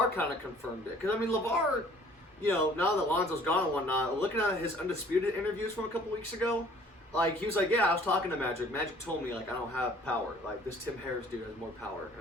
kind of confirmed it because LeVar, now that Lonzo's gone and whatnot, looking at his Undisputed interviews from a couple weeks ago, he was like, yeah, I was talking to Magic. Magic told me I don't have power. This Tim Harris dude has more power,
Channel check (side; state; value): both; normal; correlation 0.54